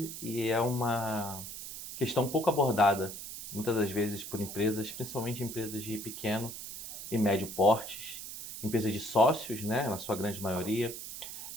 e é uma questão pouco abordada, muitas das vezes por empresas, principalmente empresas de pequeno e médio portes, empresas de sócios, né, na sua grande maioria.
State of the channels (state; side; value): noise; right; hiss, 9 dB below the sound